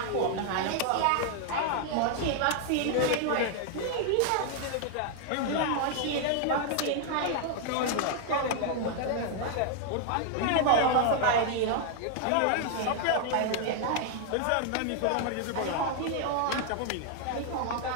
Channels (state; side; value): different; both; correlation 0.00